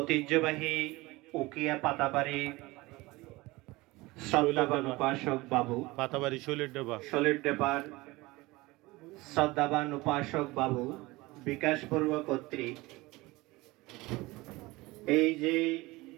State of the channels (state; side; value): quieter; left; 21.3 dB